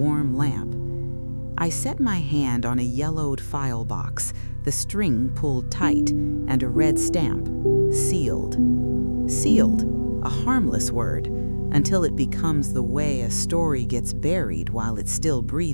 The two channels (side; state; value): both; inverted; correlation -1.00